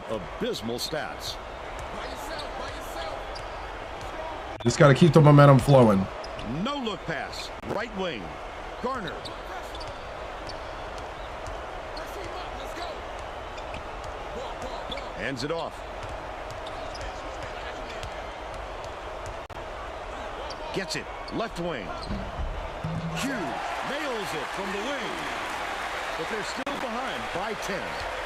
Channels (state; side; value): identical; both; correlation 1.00